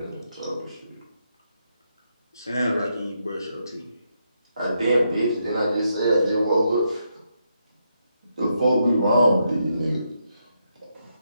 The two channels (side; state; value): both; inverted; correlation -0.81